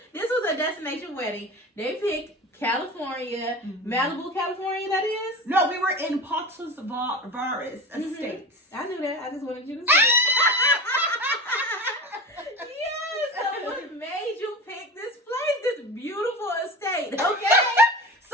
This was a destination wedding. They picked California, Malibu, California, that is? No, we were in Patos Verdes Estates. I knew that. I just wanted you to say it. Yes, so what made you pick this place, this beautiful estate, okay?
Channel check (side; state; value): both; normal; correlation 0.30